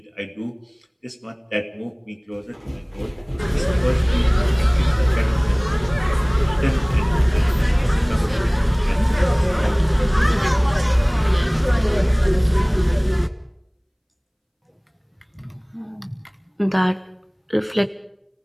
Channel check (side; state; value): both; identical; correlation 1.00